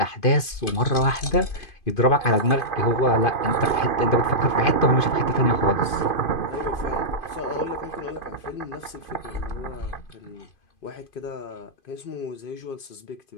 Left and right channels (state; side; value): late; right; 2.5 ms